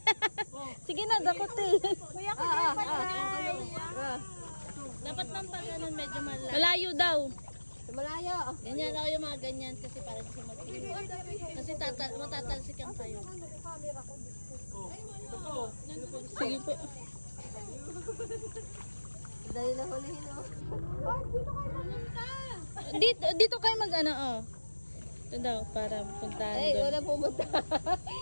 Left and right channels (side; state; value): both; inverted; correlation -1.00